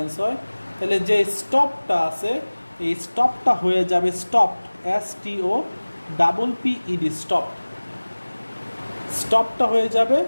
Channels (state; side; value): inverted; both; correlation -1.00